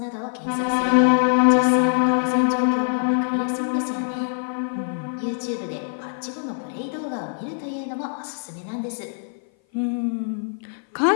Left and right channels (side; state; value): right; silent; 56 dB below the other